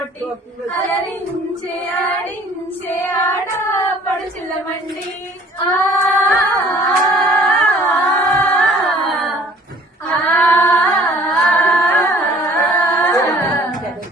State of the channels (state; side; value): normal; both; correlation 0.53